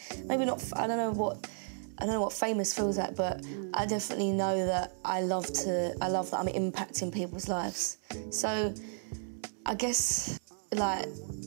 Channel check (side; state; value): left; silent; digital silence